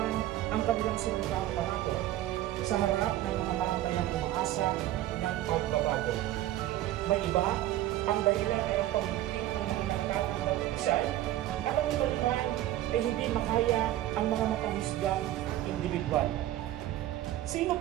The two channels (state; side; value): quieter; left; 14.1 dB